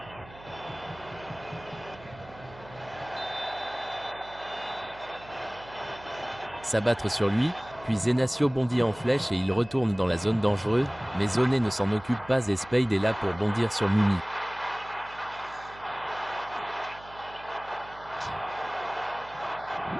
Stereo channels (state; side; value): noise; right; hum, 20 dB below the sound